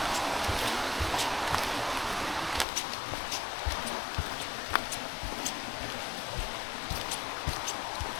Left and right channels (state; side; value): drops out; right; at 2.7 s